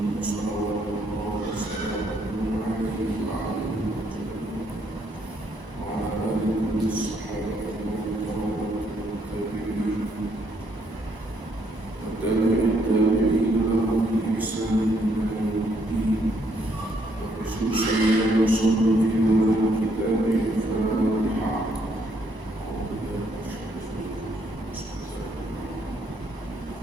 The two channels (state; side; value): late; left; 1.0 ms